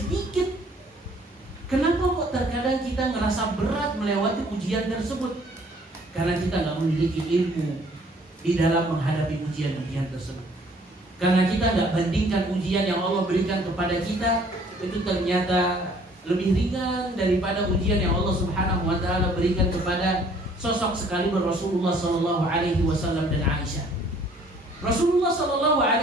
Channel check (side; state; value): both; normal; correlation 0.58